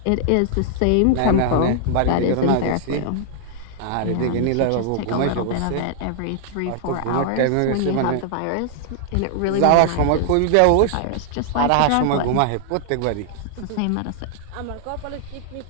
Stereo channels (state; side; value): different; both; correlation -0.01